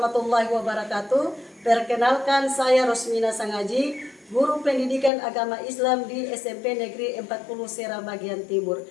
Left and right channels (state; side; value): drops out; right; at 5.1 s